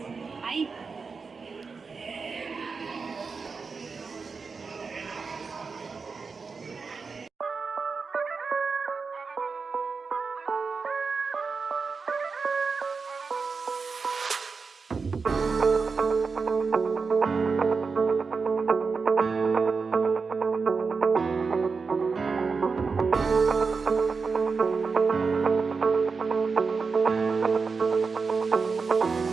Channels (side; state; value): left; quieter; 4.9 dB